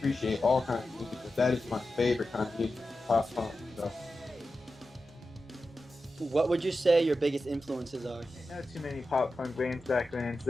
all kinds of music, but that is my favorite kind of music, pop punk. So. What would you say your biggest influences are? Not too many pop punk bands back then,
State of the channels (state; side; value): normal; both; correlation 0.92